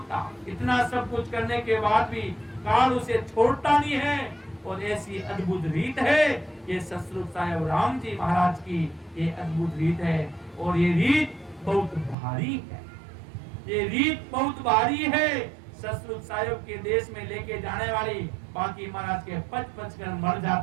इतना सब कुछ करने के बाद भी काल उसे छोड़ता नहीं है। और ऐसी अद्भुत रीत है ये सतरूप साहिब राम जी महाराज की, ये अद्भुत रीत है। और ये रीत बहुत भारी है, ये रीत बहुत भारी है। सतरूप साहिब के देश में लेके जाने वाली बाकी महाराज के पच कर मर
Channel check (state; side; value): drops out; left; at 12.2 s